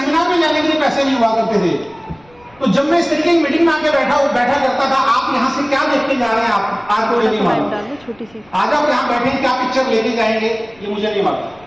में जाने के लिए पैसे नहीं हुआ करते थे, तो जब मैं इस तरीके की मीटिंग में आके बैठा करता था, आप यहां से क्या देख के जा रहे हैं, आपको ये नहीं मालूम। आज आप यहां बैठे हैं, क्या पिक्चर लेके जाएंगे ये मुझे नहीं मालूम,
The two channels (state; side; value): noise; left; rumble, 29 dB below the sound